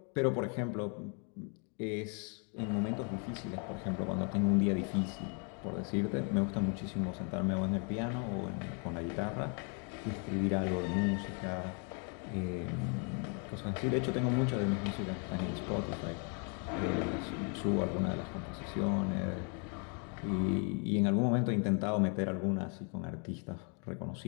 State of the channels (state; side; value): quieter; right; 38.7 dB